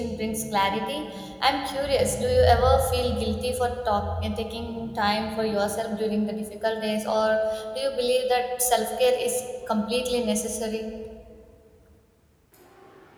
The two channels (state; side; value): identical; both; correlation 1.00